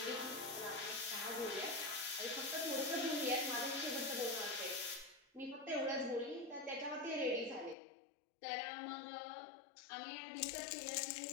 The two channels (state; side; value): drops out; right; at 7.8 s